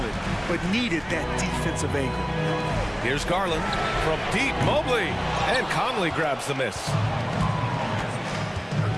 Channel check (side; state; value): both; identical; correlation 1.00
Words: but needed that defensive anchor. Here's Garland from deep. Mobley, and Conley grabs the miss.